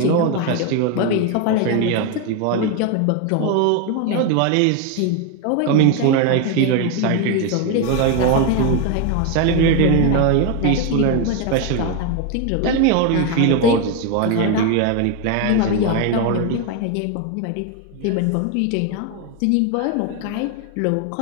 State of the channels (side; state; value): both; different; correlation 0.01